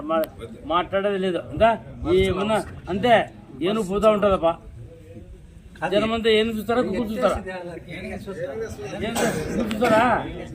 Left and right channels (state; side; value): identical; both; correlation 1.00